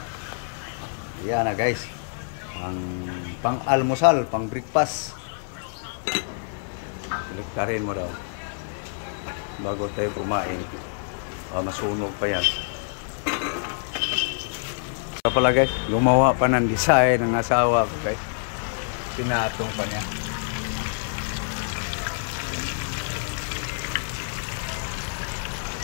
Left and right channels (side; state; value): right; silent; 61 dB below the other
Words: Yan na guys, ang pang-almusal, pang-breakfast. Baliktarin mo daw bago tayo kumain. Masunog pa yan. Kaya pala guys, gumawa pa ng design ng asawa ko guys. Sinatong pa niya.